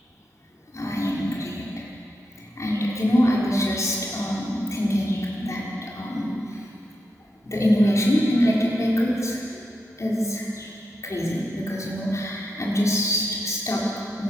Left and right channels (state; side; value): normal; both; correlation 0.85